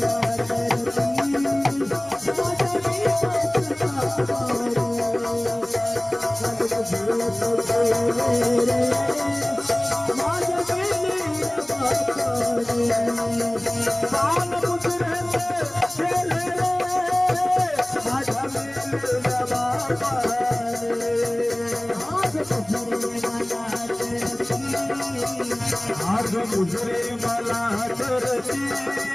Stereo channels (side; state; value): right; noise; rumble, 29 dB below the sound